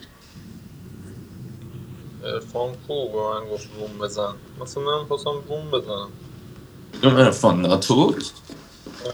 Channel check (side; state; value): both; identical; correlation 1.00